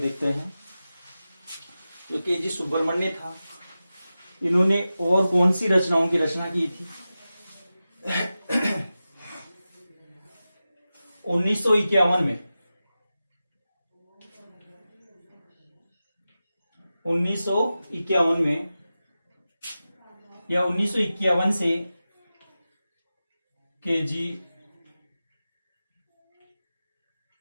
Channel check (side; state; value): both; inverted; correlation -0.94